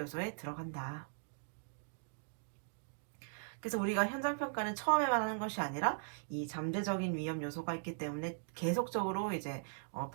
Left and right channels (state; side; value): silent; left; digital silence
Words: 들어간다. 그래서 우리가 현장 평가는 처음에만 하는 것이 아니라 이 잠재적인 위험 요소가 있기 때문에 계속적으로 이제